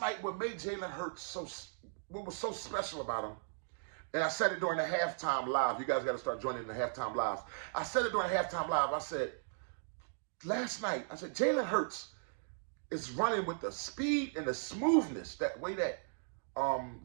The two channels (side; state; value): left; silent; digital silence